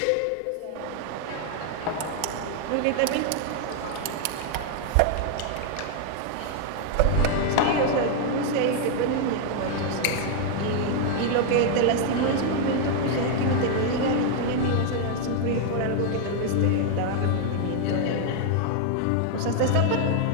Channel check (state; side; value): different; both; correlation 0.00